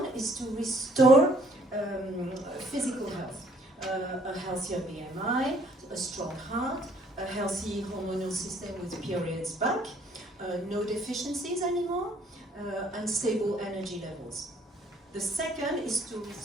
is to restore physical health, a healthier BMI, a strong heart, a healthy hormonal system with periods back, no deficiencies anymore, and stable energy levels. The second is to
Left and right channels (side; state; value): both; normal; correlation 0.62